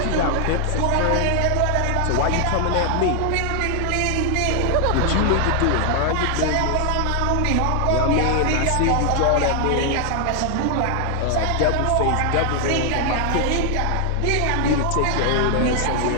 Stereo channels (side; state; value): both; different; correlation 0.00